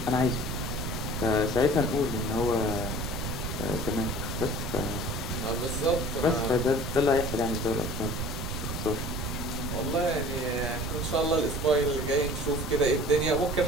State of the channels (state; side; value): noise; right; rumble, 3 dB below the sound